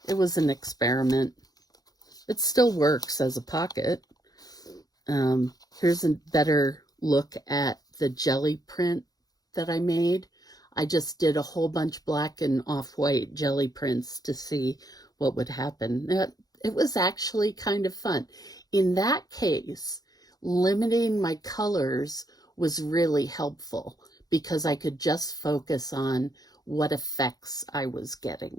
It was an experiment. It still works as a pocket. Here's a better look at the jelly print that I made. I just did a whole bunch black and off-white jelly prints to see what would happen. It was actually kind of fun. In that case, limiting my colors was really helpful because I could just focus on what effects I was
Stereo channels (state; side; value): late; right; 0.18 ms